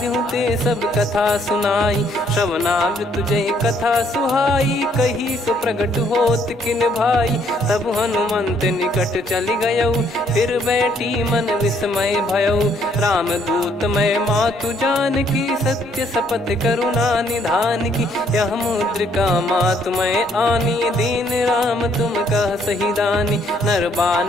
ते सब कथा सुनाई। श्रवणामृत जय कथा सुहाई, कही सो प्रगट होत किन भाई। तब हनुमंत निकट चली गयौ, फिर बैठी मन विस्मय भयौ। राम दूत मैं मातु जान की, सत्य शपथ करुणा निधान की। यह मुद्रिका मातु मैं आनी, दीन राम तुम कह सही दानी। नर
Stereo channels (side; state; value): both; normal; correlation 0.67